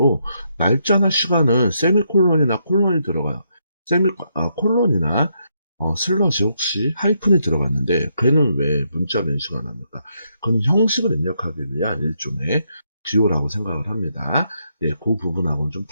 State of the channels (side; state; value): both; inverted; correlation -0.78